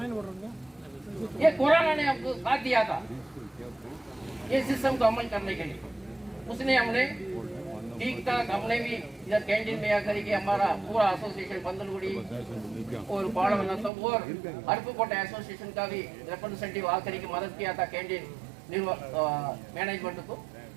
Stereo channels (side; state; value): left; drops out; at 13.9 s